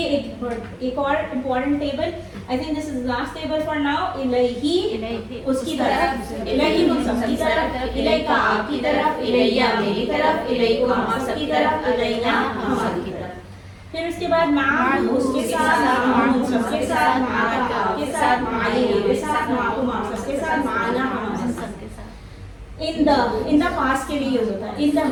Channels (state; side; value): identical; both; correlation 1.00